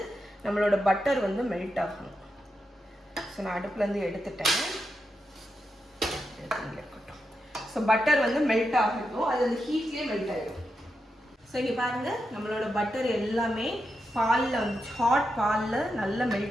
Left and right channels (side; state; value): both; normal; correlation 0.86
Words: நம்மளோட பட்டர் வந்து மெல்ட் ஆகணும். ஸோ நான் அடுப்புலேருந்து எடுத்துட்டேன். இருக்கட்டும். ஸோ பட்டர் வந்து மெல்ட் ஆகட்டும். அது அந்த ஹீட்லேயே மெல்ட் ஆகிடும். ஸோ இங்கே பாருங்கள் நம்மளோட பட்டர் எல்லாமே பாலில் வந்து ஹாட் பாலில் நல்லா